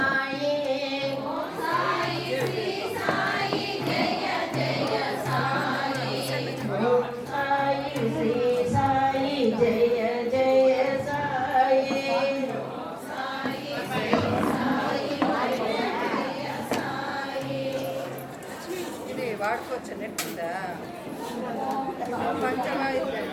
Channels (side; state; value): both; identical; correlation 1.00